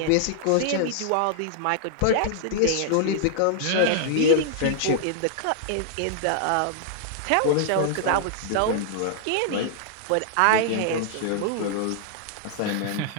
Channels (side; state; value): both; different; correlation -0.01